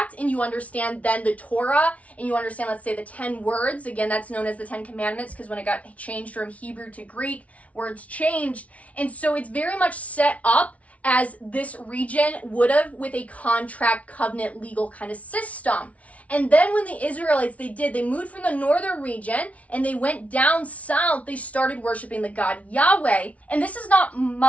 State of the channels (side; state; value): right; late; 0.066 ms